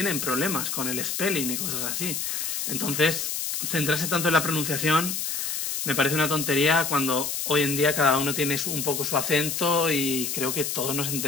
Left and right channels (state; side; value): noise; left; hiss, 2 dB below the sound